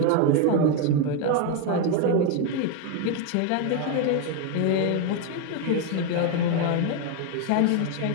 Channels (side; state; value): both; different; correlation 0.01